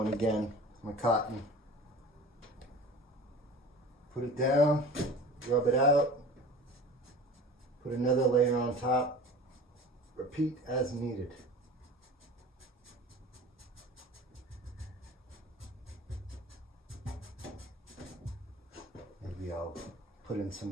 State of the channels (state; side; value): normal; both; correlation 0.39